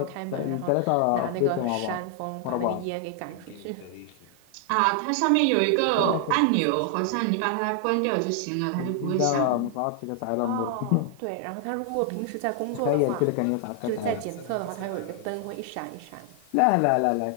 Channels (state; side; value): different; both; correlation 0.00